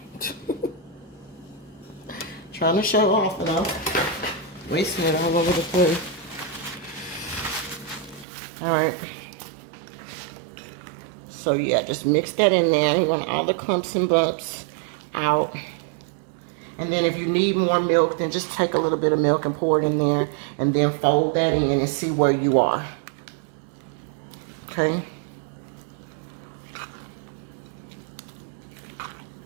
Trying to show off, and I'm wasting it all over the place. All right. So yeah, just mix that in there. We want all the clumps and bumps out. And then if you need more milk, then just take a little bit of milk and pour it in there. And then fold that in and see where you are. Okay.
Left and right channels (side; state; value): left; drops out; at 8.2 s